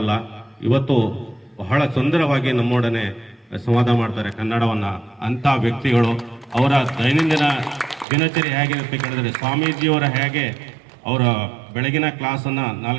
ಇವತ್ತು ಬಹಳ ಸುಂದರವಾಗಿ ನಮ್ಮೊಡನೆ ಸಂವಾದ ಮಾಡ್ತಾರೆ ಕನ್ನಡವನ್ನ. ಅಂತ ವ್ಯಕ್ತಿಗಳು ಅವರ ದೈನಂದಿನ ದಿನಚರಿ ಹೇಗಿರುತ್ತೆ ಕೇಳಿದ್ರೆ, ಸ್ವಾಮೀಜಿಯವರ ಹೇಗೆ ಅವರ ಬೆಳಗಿನ ಕ್ಲಾಸನ್ನು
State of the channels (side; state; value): left; drops out; at 8.1 s